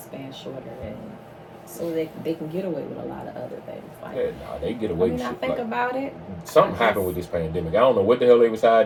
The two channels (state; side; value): identical; both; correlation 1.00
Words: shorter. And so they can get away with a lot of other things. Like, they get away with shit. I think about it. Something happened with this pandemic. I don't know what the hell they was